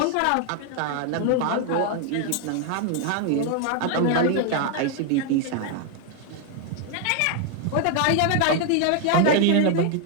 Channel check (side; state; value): both; different; correlation 0.00